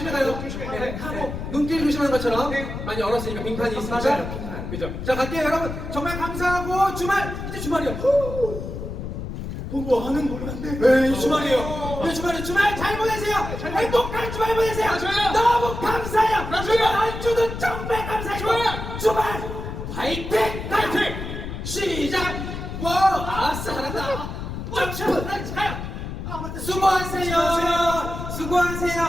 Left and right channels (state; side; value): noise; left; rumble, 7 dB below the sound